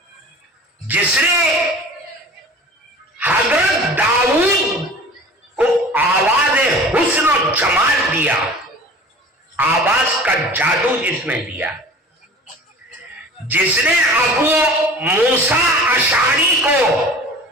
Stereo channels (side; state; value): both; normal; correlation 0.42